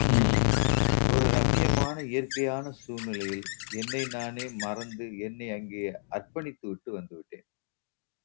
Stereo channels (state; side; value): silent; right; digital silence